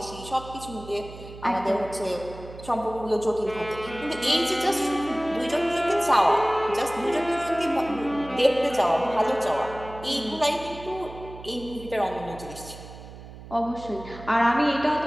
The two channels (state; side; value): noise; right; hum, 15 dB below the sound